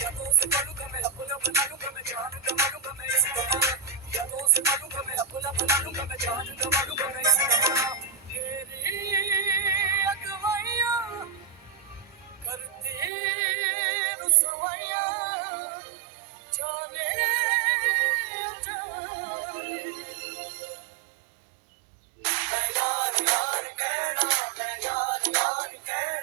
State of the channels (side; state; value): left; drops out; at 13.1 s